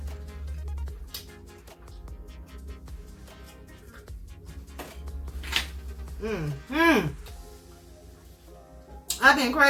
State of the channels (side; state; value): both; identical; correlation 1.00